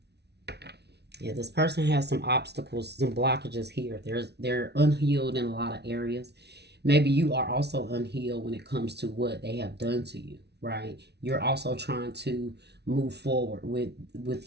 Yeah, this person has some obstacles, some blockages here. They're unhealed in a lot of areas. Maybe you are also unhealed when it comes to what they have done to you, right? You're also trying to move forward with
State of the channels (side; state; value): left; late; 0.49 ms